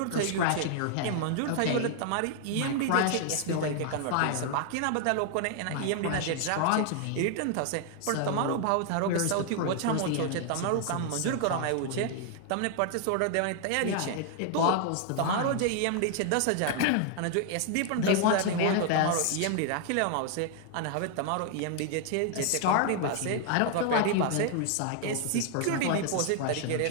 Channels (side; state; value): both; different; correlation 0.00